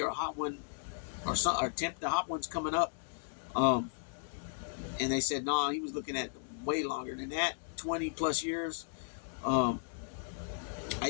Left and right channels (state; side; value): silent; right; digital silence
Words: or a hot one or attempt the hot ones coming up, and they said no, he was looking at way longer than that, 20 plus years. I